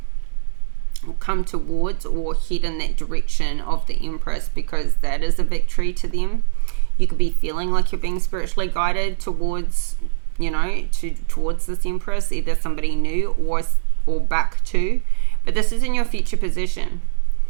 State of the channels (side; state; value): left; silent; 63 dB below the other